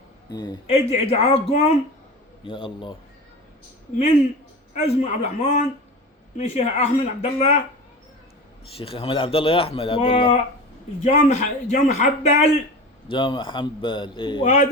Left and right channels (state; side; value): normal; both; correlation 0.31